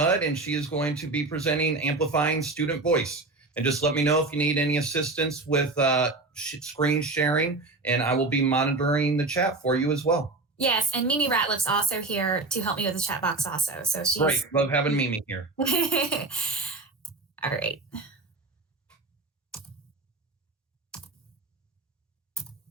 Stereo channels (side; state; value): left; quieter; 3.4 dB